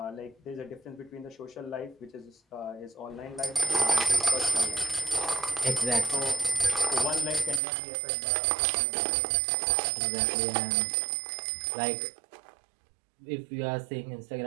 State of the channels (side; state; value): left; drops out; at 7.6 s